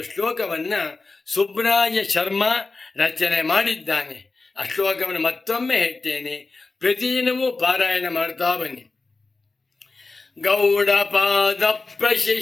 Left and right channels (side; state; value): right; quieter; 3.7 dB